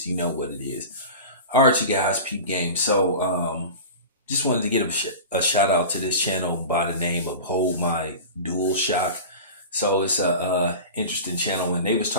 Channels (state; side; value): inverted; both; correlation -0.33